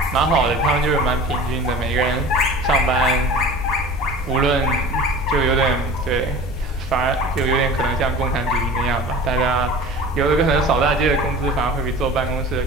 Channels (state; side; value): normal; both; correlation 0.39